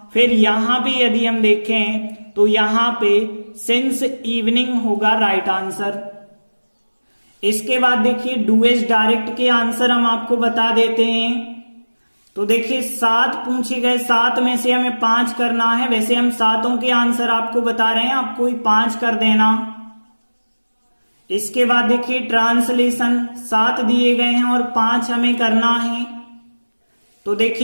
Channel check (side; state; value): both; inverted; correlation -1.00